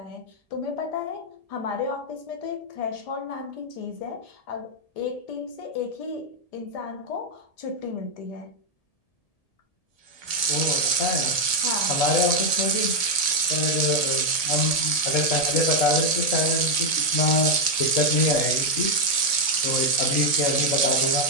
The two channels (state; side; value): late; right; 1.7 ms